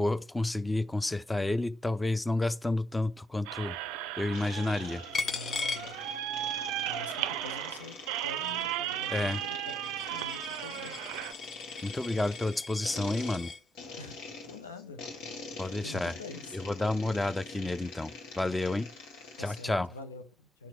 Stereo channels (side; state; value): both; normal; correlation 0.78